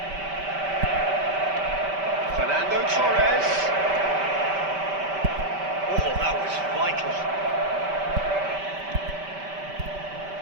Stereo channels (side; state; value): left; late; 5.1 ms